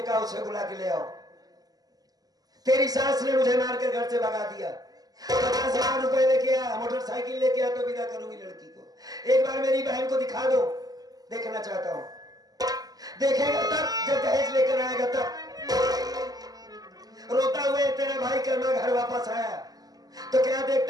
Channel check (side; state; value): left; late; 0.18 ms